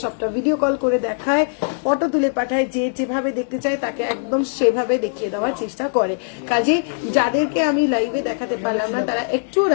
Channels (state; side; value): silent; right; digital silence